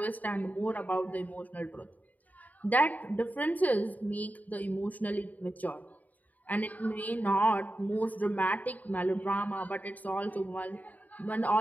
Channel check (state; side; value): late; right; 0.077 ms